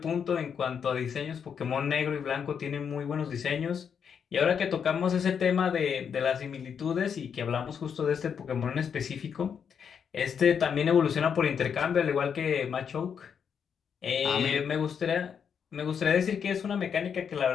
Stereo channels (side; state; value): right; quieter; 7.2 dB